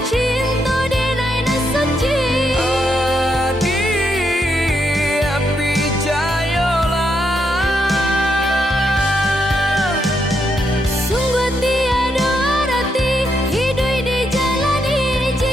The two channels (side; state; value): both; normal; correlation 0.79